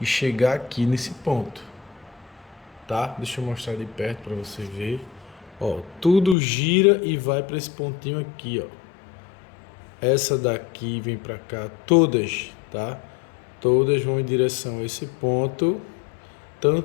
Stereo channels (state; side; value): drops out; right; at 6.4 s